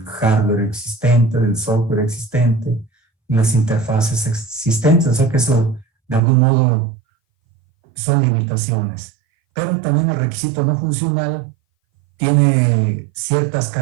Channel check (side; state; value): left; drops out; at 6.2 s